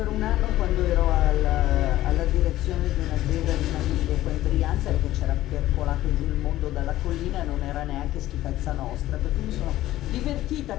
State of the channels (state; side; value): quieter; right; 14.9 dB